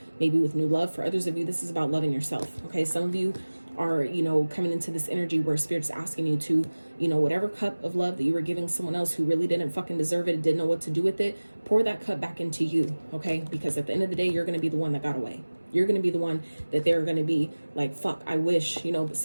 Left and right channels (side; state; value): both; inverted; correlation -1.00